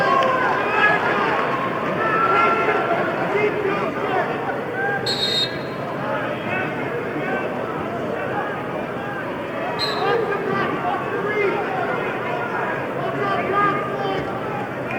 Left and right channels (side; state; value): both; identical; correlation 1.00